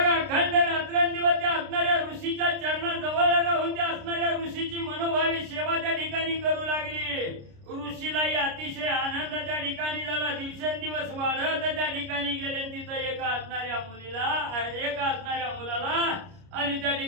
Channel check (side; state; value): left; late; 29 ms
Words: अखंड रात्रंदिवस त्या असणाऱ्या ऋषीच्या चरणाजवळ राहून त्या असणाऱ्या ऋषीची मनोभावी सेवा त्या ठिकाणी करू लागली. ऋषीलाही अतिशय आनंद त्या ठिकाणी झाला. दिवसेंदिवस वाढत त्या ठिकाणी गेले. तिथं एका असणाऱ्या मुलाला आणि त्या